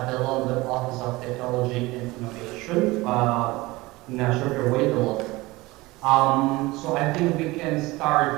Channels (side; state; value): left; quieter; 20.9 dB